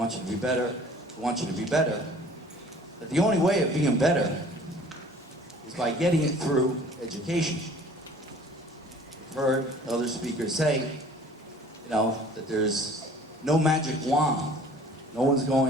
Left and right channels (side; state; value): both; normal; correlation 0.50